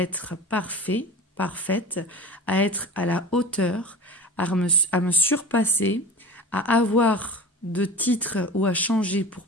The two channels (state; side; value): normal; both; correlation 0.35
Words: parfait, parfaite, à être à la hauteur, à me surpasser, à avoir de titres ou à changer pour